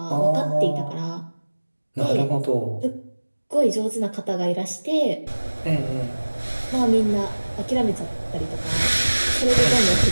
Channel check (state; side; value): inverted; both; correlation -1.00